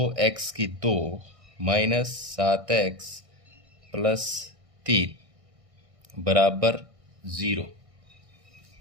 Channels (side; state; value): left; late; 1.6 ms